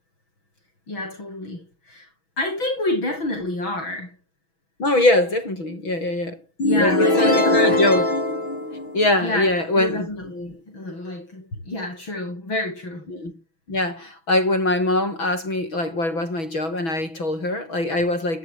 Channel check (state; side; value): late; right; 6.1 ms